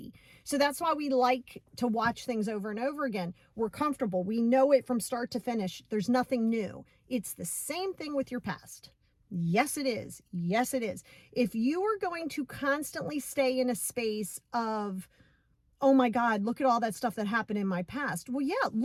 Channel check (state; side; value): identical; both; correlation 1.00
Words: So that's why we like to watch things over and over again. We're comfortable. We know it from start to finish. There's nothing new. It's the same thing with your past. Yes, it is. Yes, it is. If you are going to constantly stay in a space of, oh my God, look at all that stuff that happened in my past. Well, yeah,